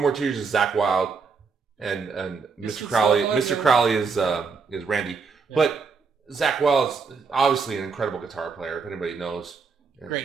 Tears is Zakk Wylde, and Mr. Crowley. Mr. Crowley is Randy. Yeah. But Zakk Wylde is obviously an incredible guitar player. If anybody knows,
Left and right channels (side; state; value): left; quieter; 5.1 dB